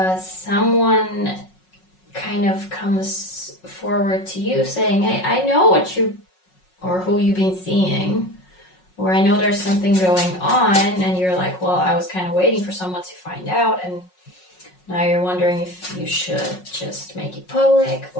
someone kind of comes forward to you saying, hey, I know what you or who you've been seeing, or I know there's something going on, and you're like, well, I was kind of waiting for someone to find out, and now you're wondering if you should just make it public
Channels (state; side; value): late; right; 5.4 ms